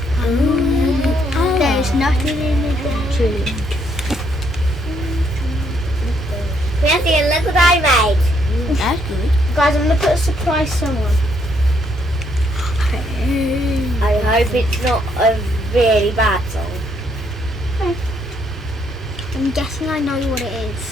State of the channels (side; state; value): both; normal; correlation 0.72